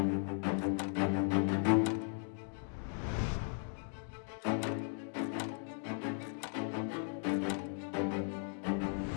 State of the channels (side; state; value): right; silent; 53 dB below the other